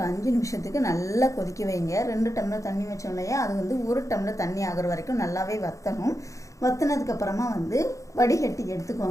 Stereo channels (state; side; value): late; right; 0.15 ms